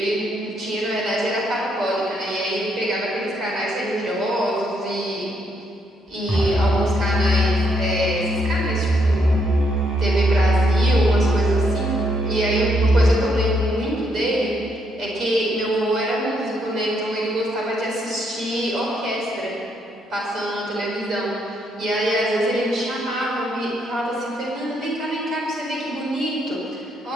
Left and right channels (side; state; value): both; normal; correlation 0.74